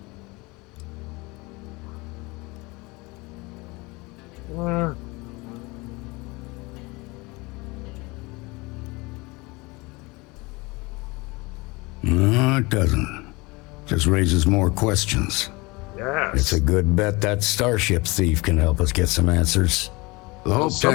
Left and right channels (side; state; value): right; quieter; 24.6 dB